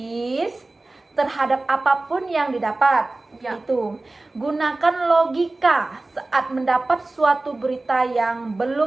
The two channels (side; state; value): left; quieter; 3.1 dB